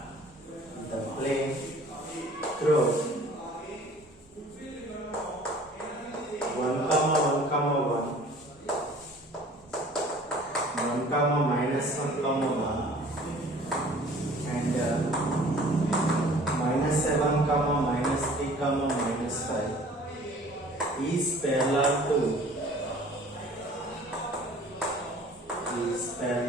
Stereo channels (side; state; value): both; normal; correlation 0.49